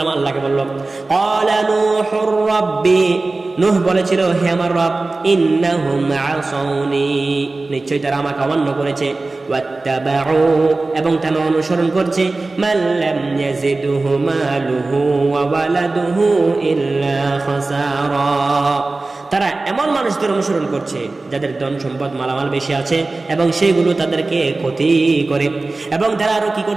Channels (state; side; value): quieter; left; 3.3 dB